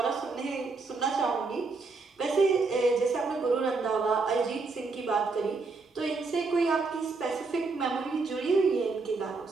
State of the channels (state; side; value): quieter; left; 4.0 dB